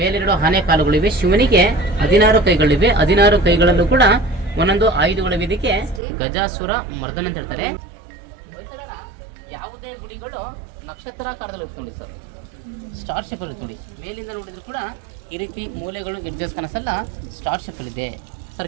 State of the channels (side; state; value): left; drops out; at 6.0 s